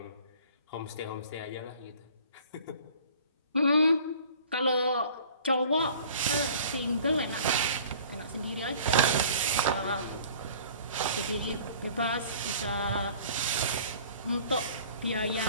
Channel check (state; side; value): inverted; both; correlation -0.49